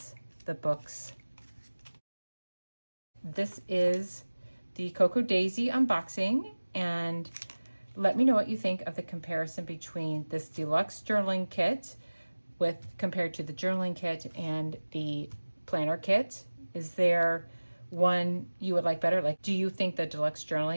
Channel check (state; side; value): inverted; both; correlation -1.00